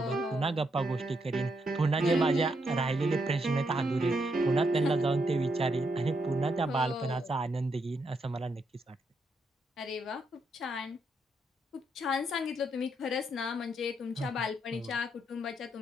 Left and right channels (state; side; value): normal; both; correlation 0.78